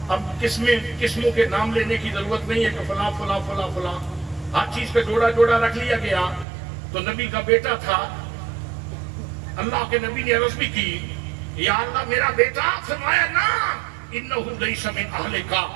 اب قسموں کے نام لینے کی ضرورت نہیں ہے کہ فلاں فلاں فلاں فلاں، ہر چیز کا جوڑا جوڑا رکھ لیا گیا۔ تو نبی کا بیٹا تھا، اللہ کے نبی نے عرض بھی کی یا اللہ میرا بیٹا، فرمایا نا انہو لیس من اہلک،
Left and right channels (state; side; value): drops out; left; at 6.5 s